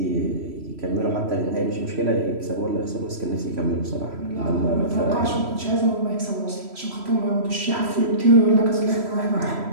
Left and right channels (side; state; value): left; late; 3.0 ms